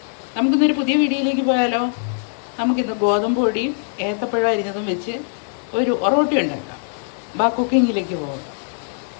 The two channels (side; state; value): right; silent; digital silence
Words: നമുക്കിന്നൊരു പുതിയ വീഡിയോയിലേക്ക് പോയാലോ. നമുക്കിന്ന് ഗോതമ്പ് പൊടിയും ഏത്തപ്പഴം അരിഞ്ഞതും വെച്ച് ഒരു ഒറോട്ടി ഉണ്ടാക്കാം. കുക്കിങ്ങിലേക്ക് പോകാം.